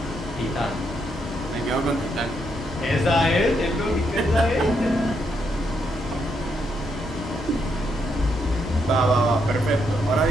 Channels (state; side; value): normal; both; correlation 0.78